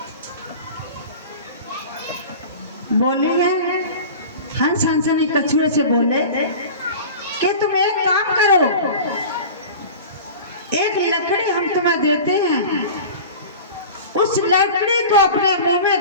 बोली है, हंस हंसनी कछुए से बोले कि तुम एक काम करो, एक लकड़ी हम तुम्हें देते हैं, उस लकड़ी को अपने मुंह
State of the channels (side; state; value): both; inverted; correlation -0.36